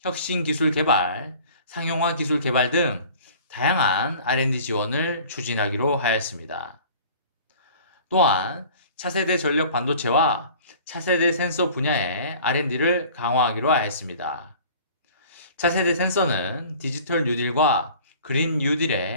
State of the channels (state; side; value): inverted; both; correlation -0.46